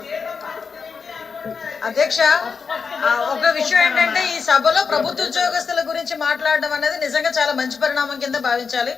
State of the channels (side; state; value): right; quieter; 5.4 dB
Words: అధ్యక్ష, ఒక విషయం ఏంటంటే ఈ సభలో ప్రభుత్వ ఉద్యోగస్తుల గురించి మాట్లాడడం అనేది నిజంగా చాలా మంచి పరిణామం కింద భావించాలి.